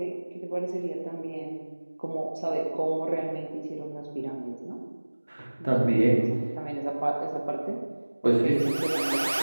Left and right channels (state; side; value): inverted; both; correlation -1.00